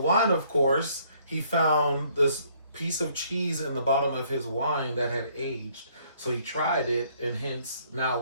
of course, he found this piece of cheese in the bottom of his wine that had aged. So he tried it, and hence now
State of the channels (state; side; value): inverted; both; correlation -0.64